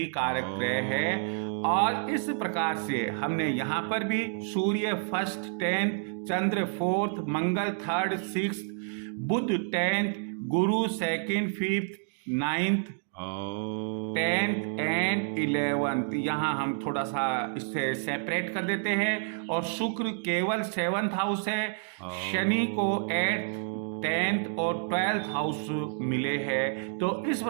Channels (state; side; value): silent; left; digital silence